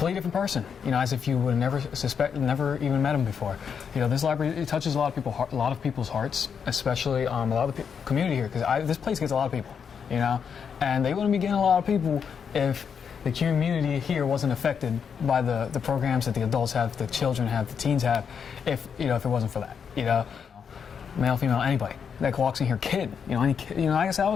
different person, as if you would have never even met them before. This library, it touches a lot of people's hearts, especially a lot of the community here, because this place gets a lot of people, and they wouldn't be getting a lot of people if the community here wasn't affected by the programs that the adults have, the children have, the teens have, if it wasn't for that, male, female, anybody that walks in here, kid, any kid, I guess I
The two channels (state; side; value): quieter; right; 6.9 dB